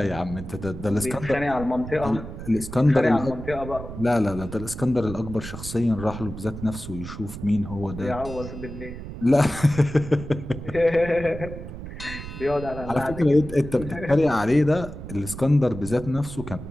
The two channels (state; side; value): noise; right; rumble, 10 dB below the sound